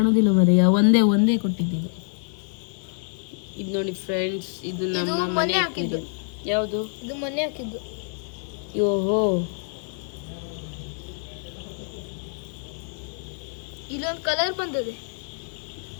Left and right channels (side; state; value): right; silent; digital silence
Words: ಮರಿ, ಒಂದೇ ಕೊಟ್ಟಿದ್ದು. ಇದು ನೋಡಿ ಫ್ರೆಂಡ್ಸ್, ಇದು ನಮ್ಮ ಮನೆ ಅಕ್ವೇರಿಯಂ. ಯಾವುದು? ಇದು ಮನೆ ಹಾಕಿದ್ದು. ಓಹೋ, ಇಲ್ಲೊಂದು ಕಲರ್ ಬಂದಿದೆ.